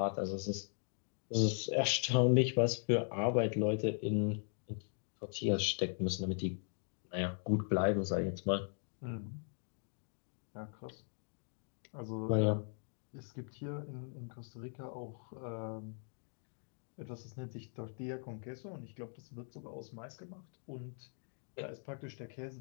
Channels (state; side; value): silent; right; 52 dB below the other